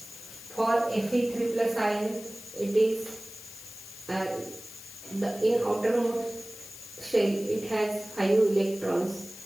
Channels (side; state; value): left; noise; hiss, 15 dB below the sound